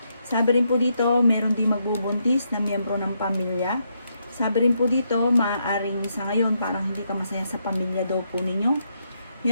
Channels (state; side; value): inverted; both; correlation -0.79